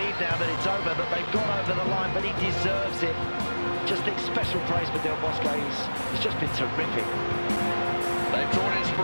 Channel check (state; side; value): inverted; both; correlation -1.00